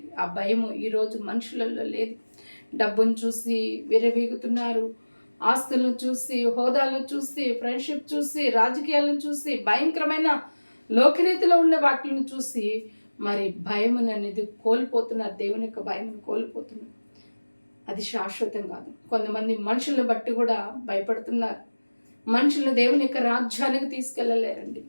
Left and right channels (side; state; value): both; inverted; correlation -1.00